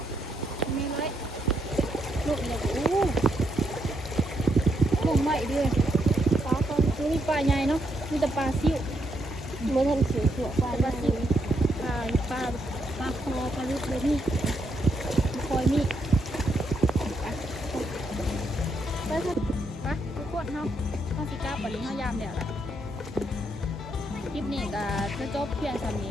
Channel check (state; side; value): normal; both; correlation 0.78